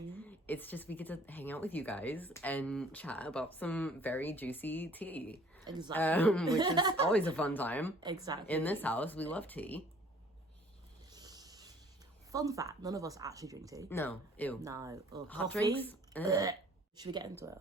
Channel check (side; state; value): both; normal; correlation 0.55